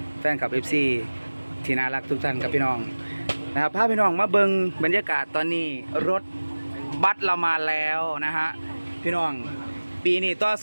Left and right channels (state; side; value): inverted; both; correlation -1.00